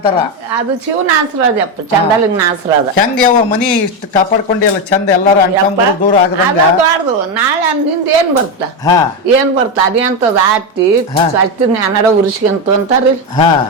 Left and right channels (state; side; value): normal; both; correlation 0.11